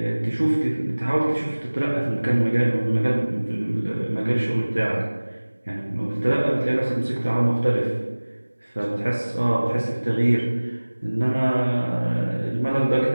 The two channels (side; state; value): both; inverted; correlation -1.00